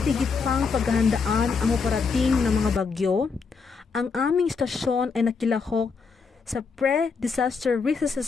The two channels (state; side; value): quieter; right; 5.1 dB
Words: tigit pang paghahandaan ang operating ng mga bagyo, ang aming stasyon ay nakilahok sa pre-disaster risk